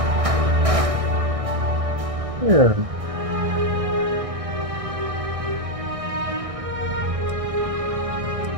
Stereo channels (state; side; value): late; left; 1.6 ms